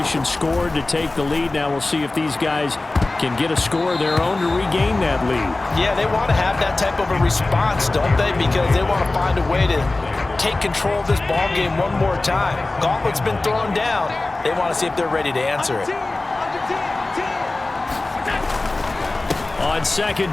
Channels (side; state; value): right; quieter; 3.1 dB